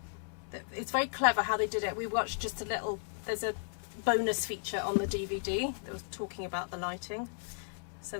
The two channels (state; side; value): silent; right; digital silence